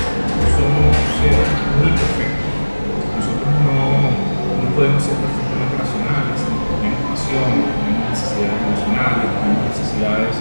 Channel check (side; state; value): both; inverted; correlation -1.00